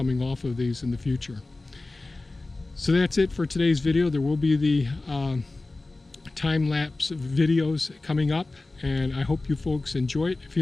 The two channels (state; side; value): quieter; right; 3.1 dB